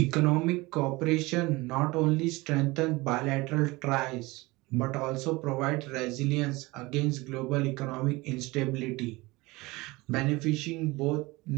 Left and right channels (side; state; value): left; quieter; 22.1 dB